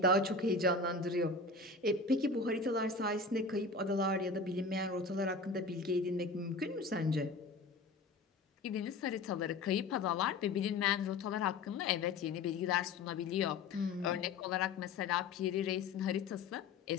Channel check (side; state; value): right; quieter; 3.8 dB